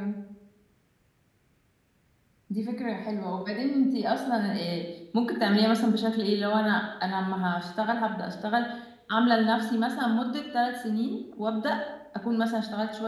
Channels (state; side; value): identical; both; correlation 1.00